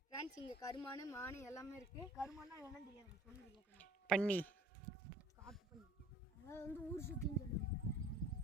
ஃப்ரெண்ட்ஸ், இங்கே கருமானு மானு எல்லாமே இருக்குது. கருமானா என்னன்னு தெரியாது, சொல்லுங்க. பன்னி, காட்டு பண்ணி, அதாவது வந்து ஊர் சுற்றின்னு சொல்லுவாங்க.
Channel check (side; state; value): both; normal; correlation 0.51